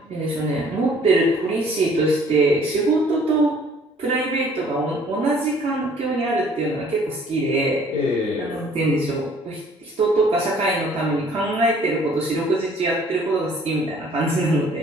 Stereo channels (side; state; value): both; normal; correlation 0.57